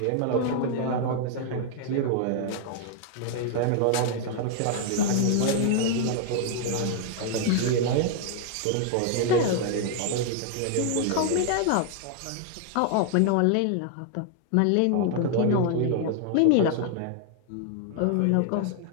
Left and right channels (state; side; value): different; both; correlation 0.00